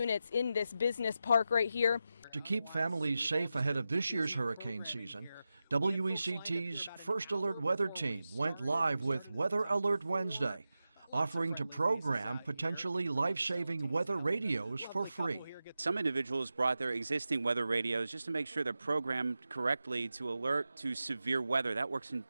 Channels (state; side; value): inverted; both; correlation -0.92